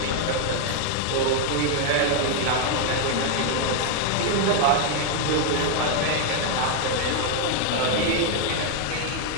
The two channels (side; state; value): both; different; correlation 0.00